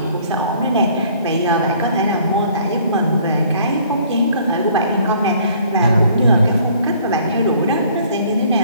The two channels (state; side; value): inverted; both; correlation -0.57